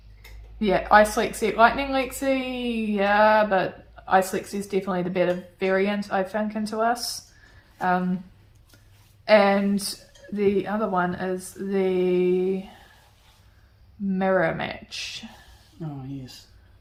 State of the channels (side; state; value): both; identical; correlation 1.00